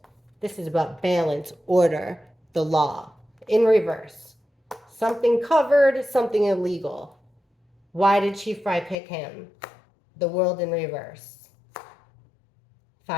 This is about balance, order, the law. In reverse. Something covered, something illegal. Why did Chief Fry pick him? The World in reverse.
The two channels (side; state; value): right; drops out; at 9.0 s